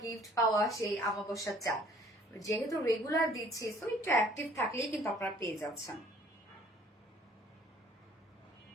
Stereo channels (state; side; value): normal; both; correlation 0.56